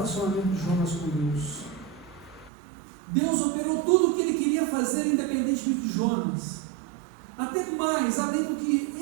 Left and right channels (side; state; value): left; drops out; at 2.5 s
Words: de Jonas com Deus. Deus operou tudo o que ele queria fazer, independentemente de Jonas, até mais, além do que